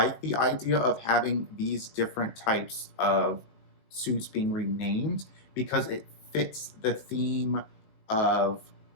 the idea of having these different types of suits being renamed because it fits the theme of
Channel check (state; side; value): late; right; 19 ms